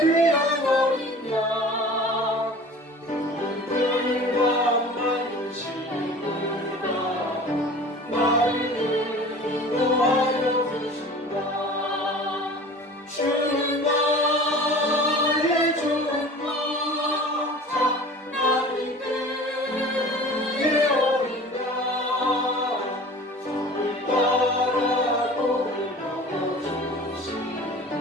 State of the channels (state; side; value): normal; both; correlation 0.42